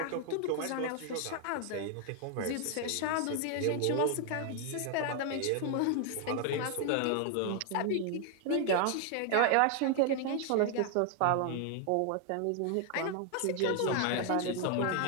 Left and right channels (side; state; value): both; different; correlation 0.00